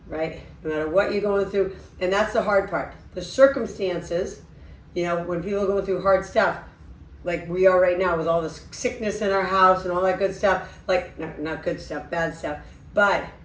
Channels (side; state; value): both; identical; correlation 1.00